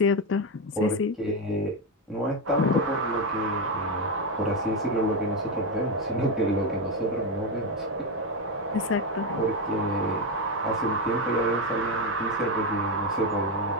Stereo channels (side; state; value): both; normal; correlation 0.10